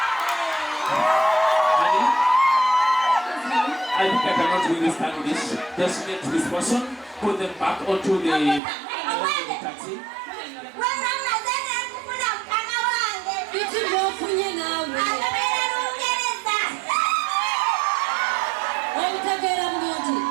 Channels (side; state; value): left; drops out; at 8.6 s